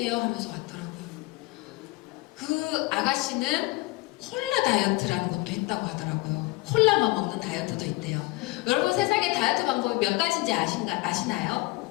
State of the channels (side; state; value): right; quieter; 21.6 dB